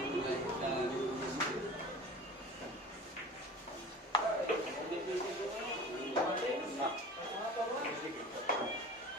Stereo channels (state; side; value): normal; both; correlation 0.38